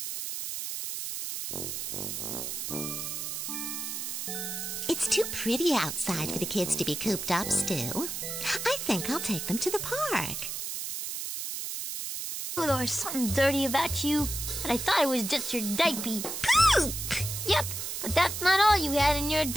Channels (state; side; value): noise; right; hiss, 5 dB below the sound